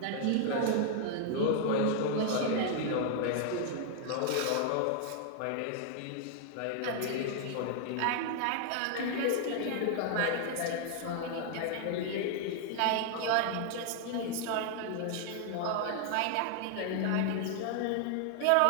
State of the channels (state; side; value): different; both; correlation 0.00